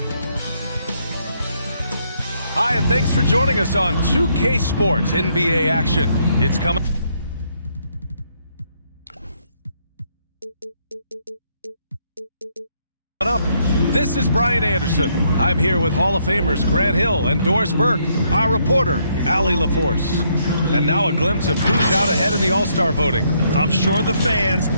Hi, and thanks for joining us on 2K Sports NBA action. It's coming up. This is Brian Anderson. I'm here with Hall of Famers Grant Hill and Doris Burke, our reporter, Allie LaForce. And now a glimpse of who's out ahead in the All-Star voting. I'm sure the fans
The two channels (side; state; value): both; inverted; correlation -0.72